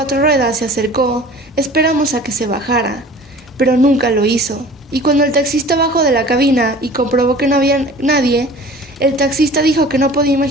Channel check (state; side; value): normal; both; correlation 0.44